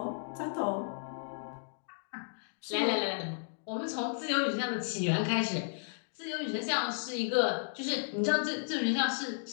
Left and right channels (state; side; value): silent; right; digital silence